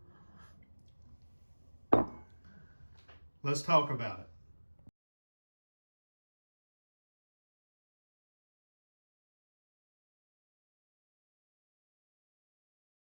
Let's talk about it.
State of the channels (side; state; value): both; inverted; correlation -1.00